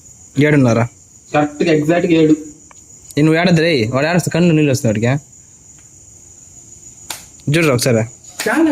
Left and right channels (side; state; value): both; identical; correlation 1.00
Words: 7:30 కరెక్ట్ గా ఎగ్జాక్ట్ గా 7. నువ్వు ఏడద్దురే, వాడు ఏడస్తా కన్ను నీళ్ళు వస్తుంది వాడికి. చూడరా ఒకసారి.